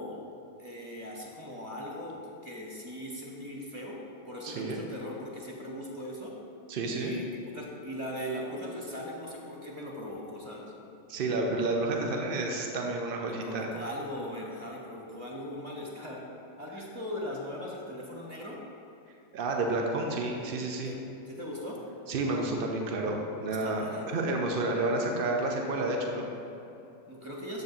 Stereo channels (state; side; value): late; left; 2.6 ms